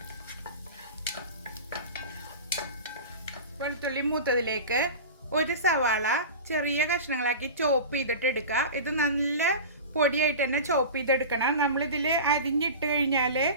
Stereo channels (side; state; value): both; inverted; correlation -0.31